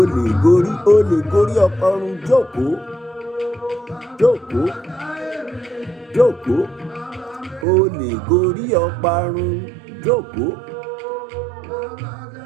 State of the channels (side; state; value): left; drops out; at 7.7 s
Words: lè gorí ọparun jókòó. O lè gorí ọparun jókòó.